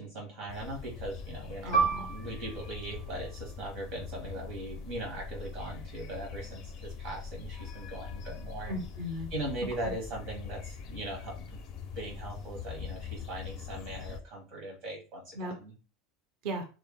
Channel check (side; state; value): both; normal; correlation 0.33